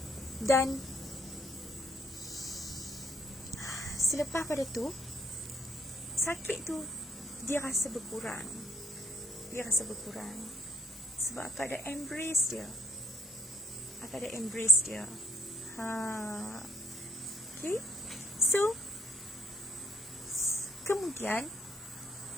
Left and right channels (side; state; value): both; normal; correlation 0.70